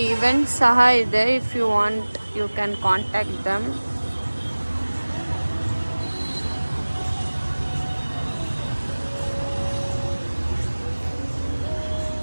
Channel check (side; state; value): both; inverted; correlation -1.00